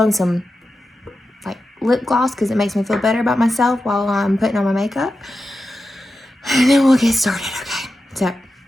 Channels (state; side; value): normal; both; correlation 0.91